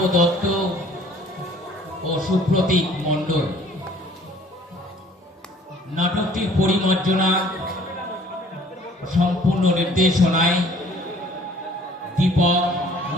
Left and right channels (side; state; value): both; normal; correlation 0.55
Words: দত্ত ও সুপ্রতীক মণ্ডল। নাটকটির পরিমার্জনা সম্পূর্ণ নির্দেশনায় দীপক